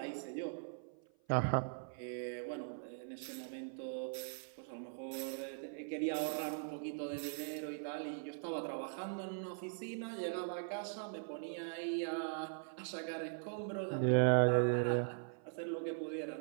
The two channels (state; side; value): silent; left; 51 dB below the other